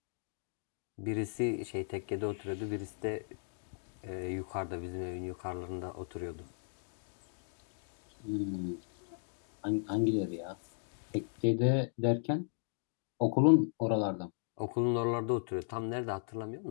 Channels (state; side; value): silent; right; digital silence